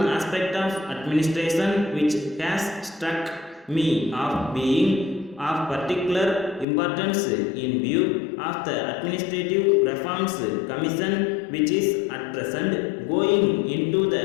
aspect of administration which has struck me of being of particular importance in view of the Administrative Reforms Commission, which is at present going into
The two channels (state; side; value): drops out; right; at 6.7 s